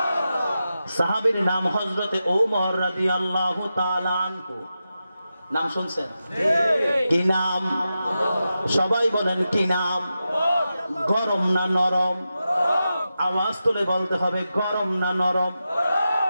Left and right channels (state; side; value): inverted; both; correlation -0.91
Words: সাহাবীর নাম হযরতে ওমর রাদিয়াল্লাহু তাআলা আনহু। নাম শুনছেন? কি নাম? সবাই বলেন কি নাম? গরম না নরম? আওয়াজ তুলে বলতে হবে, গরম না নরম?